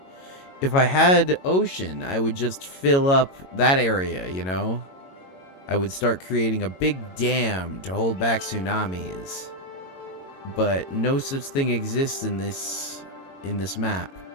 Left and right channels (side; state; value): right; late; 22 ms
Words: If I had ocean, I would just fill up that area, you know? I would start creating a big dam to hold back tsunamis. But no such thing exists in this map.